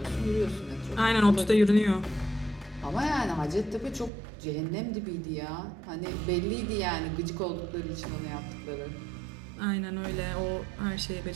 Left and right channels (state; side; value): drops out; left; at 4.1 s